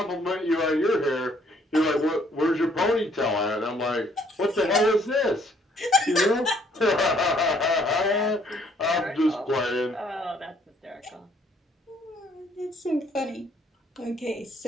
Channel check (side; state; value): both; normal; correlation 0.64